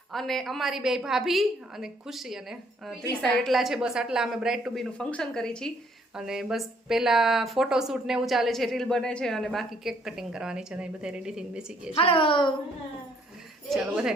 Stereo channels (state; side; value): normal; both; correlation 0.65